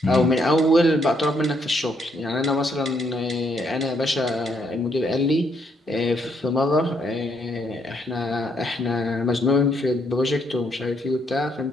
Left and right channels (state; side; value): normal; both; correlation 0.73